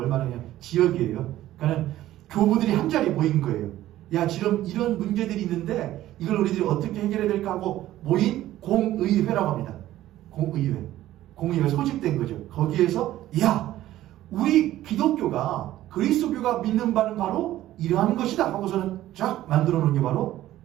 말하냐? 지역이에요. 그러니까 교부들이 한 자리에 모인 거예요. 야, 지금 이런 문제들이 있는데 이걸 우리들이 어떻게 해결해야 될까 하고 모인 공의회라고 합니다. 공의회 소집된 거죠. 거기에서 야, 우리 기독교가 그리스도교가 믿는 바는 바로 이러한 것이다 하고서는 쫙 만들어 놓은 게 바로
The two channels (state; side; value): quieter; left; 14.2 dB